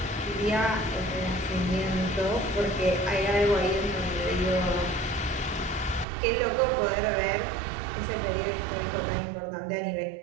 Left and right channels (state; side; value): drops out; left; at 6.1 s